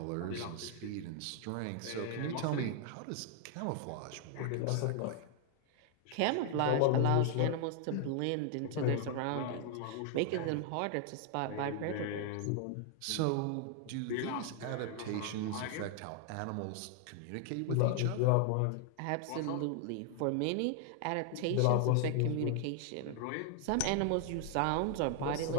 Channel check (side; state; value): both; different; correlation 0.00